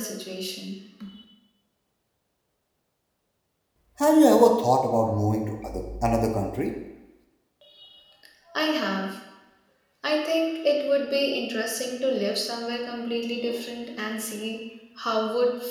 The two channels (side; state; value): both; identical; correlation 1.00